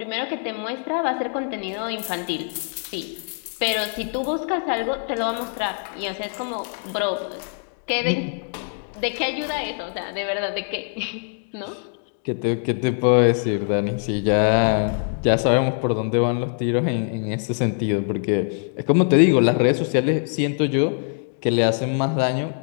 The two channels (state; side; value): silent; right; 55 dB below the other